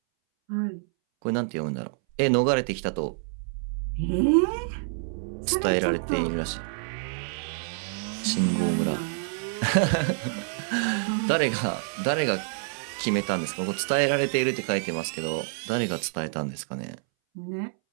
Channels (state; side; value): silent; left; 60 dB below the other